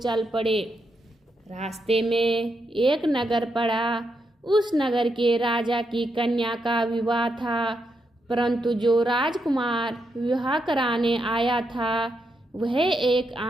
पड़े। रास्ते में एक नगर पड़ा। उस नगर के राजा की कन्या का विवाह था, परंतु जो राजकुमार विवाह कराने आया था वह एक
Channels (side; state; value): both; normal; correlation 0.82